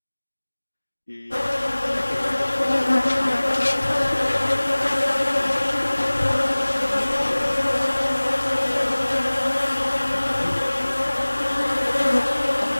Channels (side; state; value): both; inverted; correlation -1.00